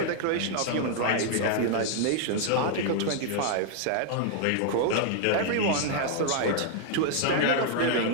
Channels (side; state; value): both; different; correlation -0.01